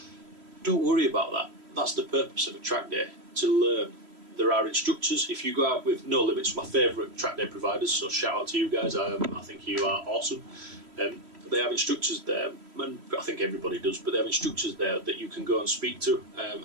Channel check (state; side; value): late; left; 3.1 ms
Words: don't worry about that. That's the purpose of a track day, to learn. There are instructors. If you go out with No Limits, my favourite track day providers, so shout out to you guys, I think you are awesome. They have instructors there, and I think everybody does, but they have instructors there that you can go and speak to,